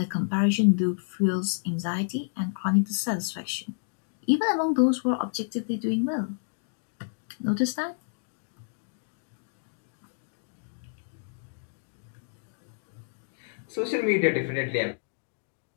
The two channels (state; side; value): silent; right; digital silence